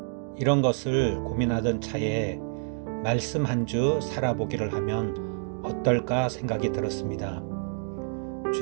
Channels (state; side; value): silent; left; 59 dB below the other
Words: 이런 것을 고민하던 차에 말씀 한 주 살아보기를 하면 어떨까 생각이 들었습니다.